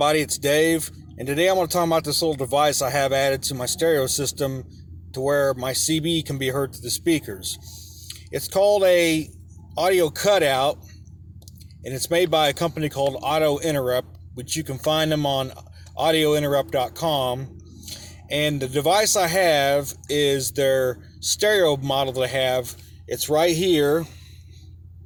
it's Dave, and today I want to talk about this little device I have added to my stereo system to where my CB can be heard through the speakers. It's called a audio cutout, and it's made by a company called Auto Interrupt, which you can find them on audiointerrupt.com. And the device I have is their stereo model that I have. It's right here.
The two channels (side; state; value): both; identical; correlation 1.00